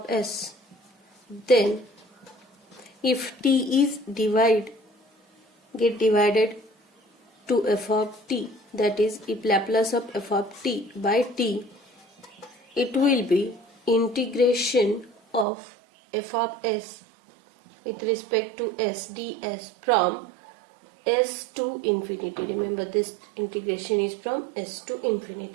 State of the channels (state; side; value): drops out; left; at 15.5 s